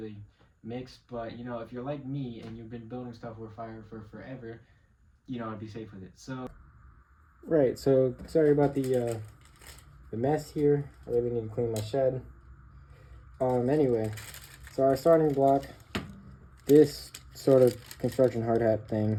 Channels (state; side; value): identical; both; correlation 1.00